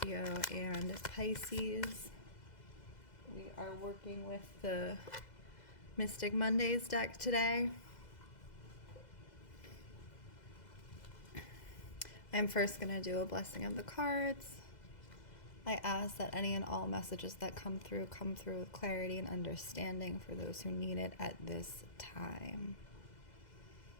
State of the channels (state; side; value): late; right; 2.0 ms